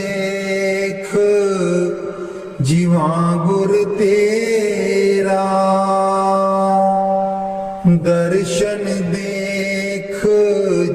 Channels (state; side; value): identical; both; correlation 1.00